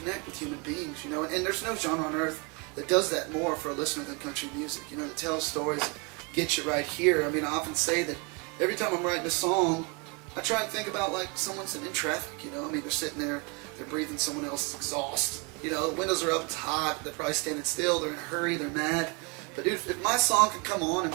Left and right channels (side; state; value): left; quieter; 31.7 dB